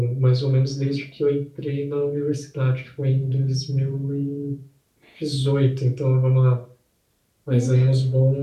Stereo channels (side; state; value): both; identical; correlation 1.00